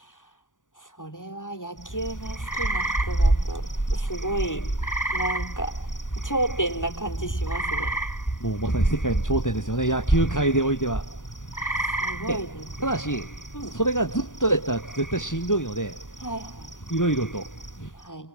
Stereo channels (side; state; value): right; late; 0.88 ms